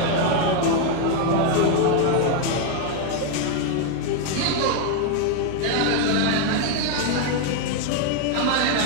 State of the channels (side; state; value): both; different; correlation 0.01